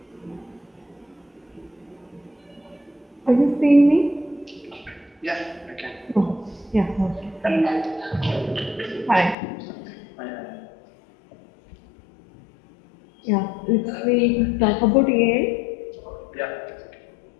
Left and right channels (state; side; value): drops out; right; at 9.3 s